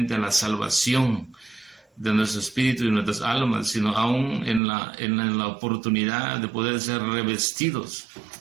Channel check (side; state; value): left; drops out; at 4.6 s